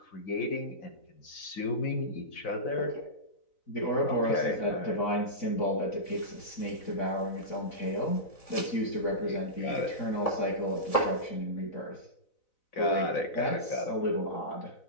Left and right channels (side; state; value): right; late; 4.0 ms